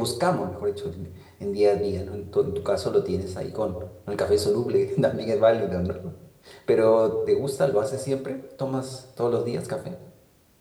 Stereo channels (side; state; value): both; identical; correlation 1.00